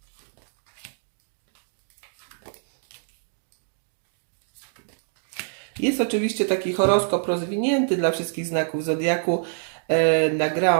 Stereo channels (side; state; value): left; silent; digital silence